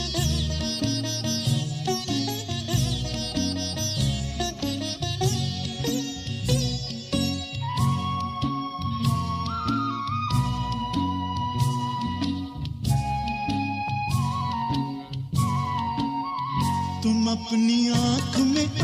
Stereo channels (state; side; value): identical; both; correlation 1.00